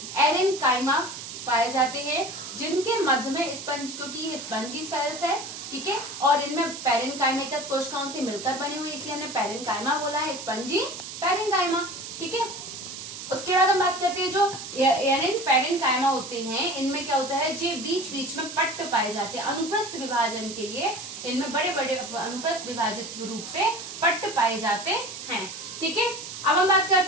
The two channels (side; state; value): right; noise; hiss, 10 dB below the sound